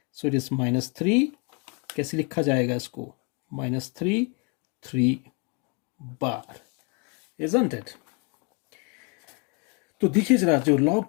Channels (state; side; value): quieter; right; 33.0 dB